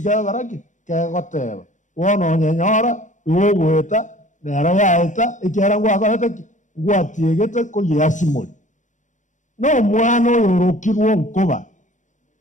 baraki kegoteba wono nyenyora uweta nera yaeta ikiara ngwakorete ngwatiegete ko yasimori no mwana yorokirwo nkoba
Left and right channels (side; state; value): right; late; 0.36 ms